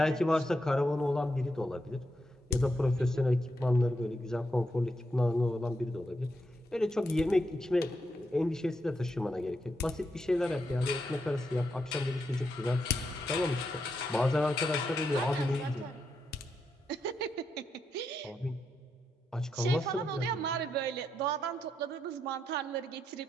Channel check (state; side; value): normal; both; correlation 0.82